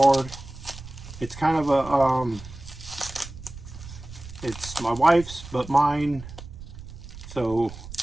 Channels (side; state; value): right; noise; rumble, 14 dB below the sound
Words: It's kind of a, it's my wife's, but mine. So